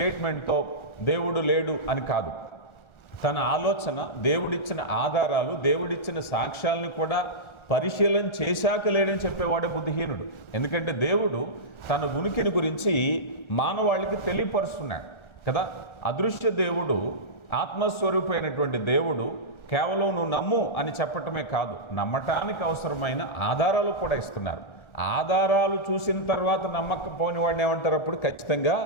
దేవుడు లేడు అని కాదు. తన ఆలోచన, దేవుడిచ్చిన ఆధారాలు, దేవుడిచ్చిన సాక్ష్యాలను కూడా పరిశీలన చేశాక లేడని చెప్పేవాడే బుద్ధిహీనుడు. ఎందుకంటే దేవుడు తన ఉనికిని గురించి మానవాళికి తెలియపరుస్తున్నాడు కదా. అదృశ్య దేవుడు, ఆత్మస్వరూపమైనటువంటి దేవుడు కేవలం నువ్వు నమ్ము అని చెప్పటమే కాదు, నమ్మటానికి అవసరమైన ఆధారాలు కూడా ఇస్తున్నారు. ఆధారాలు చూసిన తర్వాత నమ్మకపోని వాడిని ఏమంటారు? అప్పుడు ఖచ్చితంగా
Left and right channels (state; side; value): late; right; 1.4 ms